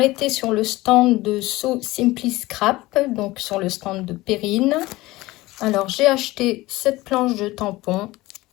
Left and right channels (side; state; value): right; quieter; 19.2 dB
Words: sur le stand de So Simply Scrap, donc sur le stand de Perrine. Alors, j'ai acheté cette planche de tampon